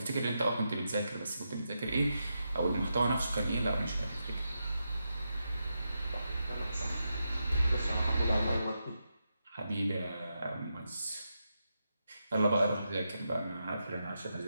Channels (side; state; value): both; inverted; correlation -0.86